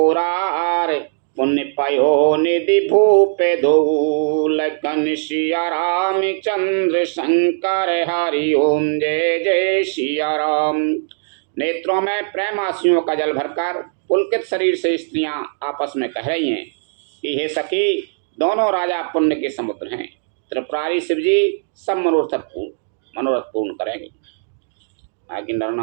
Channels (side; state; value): left; silent; digital silence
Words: पुण्य पयो निधि भूपे धो। लखन सिया राम चंद्र शंकर हरि ओम, जय जय सिया राम। नेत्रों में प्रेम आंसुओं का जल भरकर पुलकित शरीर से स्त्रियां आपस में कह रही हैं कि हे सखी, दोनों राजा पुण्य के समुद्र हैं। त्रिपुरारी शिव जी सब मनोरथ पूर्ण करेंगे। बाकी नर